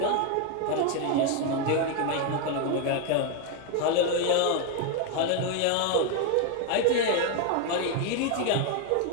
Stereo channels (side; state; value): both; different; correlation 0.01